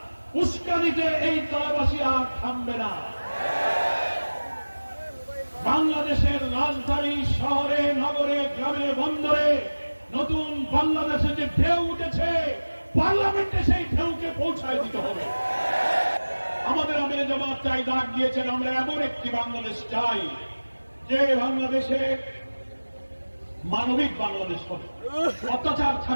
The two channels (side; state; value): both; inverted; correlation -1.00